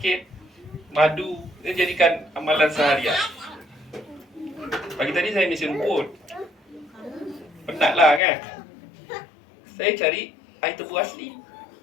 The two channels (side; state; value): right; drops out; at 8.2 s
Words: madu. Dia jadikan amalan seharian. Pagi tadi saya misi rumput. Penatlah kan. Saya cari air tebu asli.